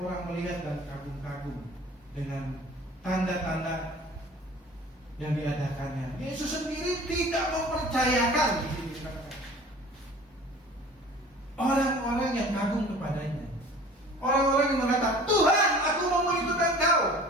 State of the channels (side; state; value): both; normal; correlation 0.45